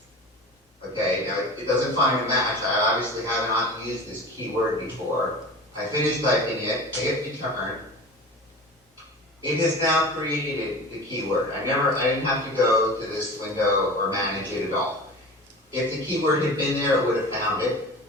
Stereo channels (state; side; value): normal; both; correlation 0.35